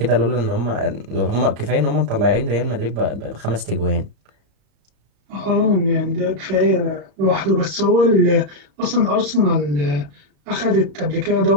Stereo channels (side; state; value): left; late; 34 ms